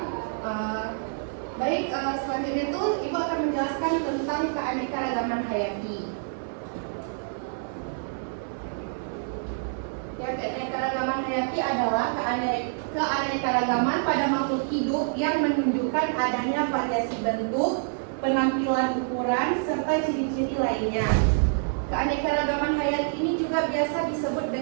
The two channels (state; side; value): silent; left; digital silence